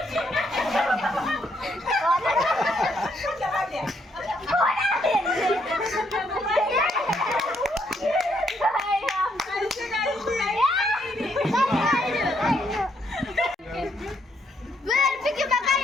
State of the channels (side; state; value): both; normal; correlation 0.73